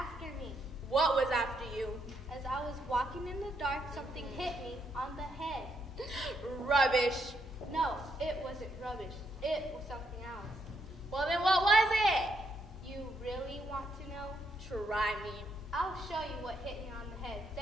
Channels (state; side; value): normal; both; correlation 0.76